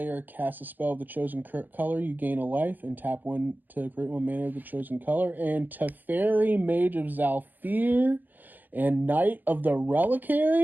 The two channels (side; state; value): left; late; 0.086 ms